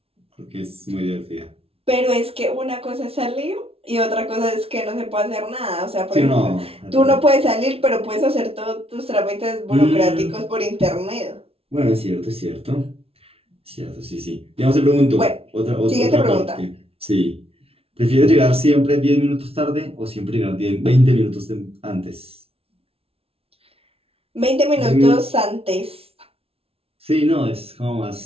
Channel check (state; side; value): late; left; 0.28 ms